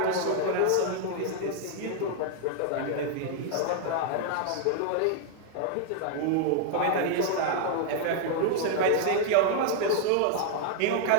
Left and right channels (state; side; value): different; both; correlation 0.00